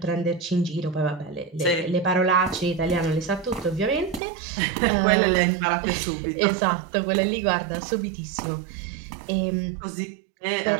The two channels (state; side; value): drops out; left; at 4.2 s